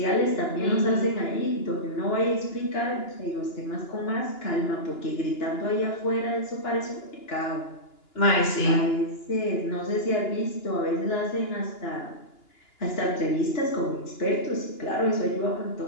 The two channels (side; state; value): right; late; 2.9 ms